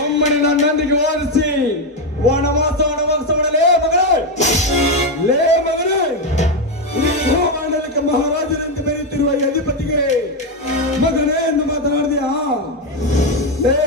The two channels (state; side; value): normal; both; correlation 0.07